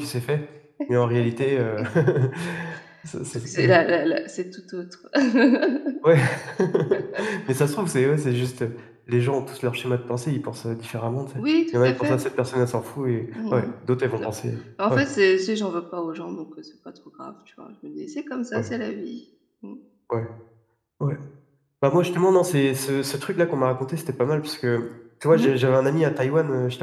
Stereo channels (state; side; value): identical; both; correlation 1.00